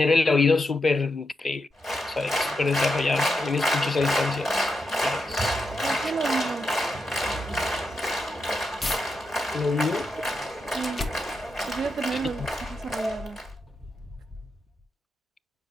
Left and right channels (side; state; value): both; normal; correlation 0.85